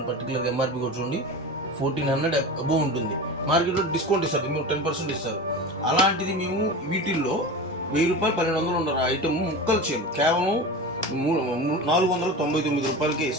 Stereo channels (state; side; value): normal; both; correlation 0.29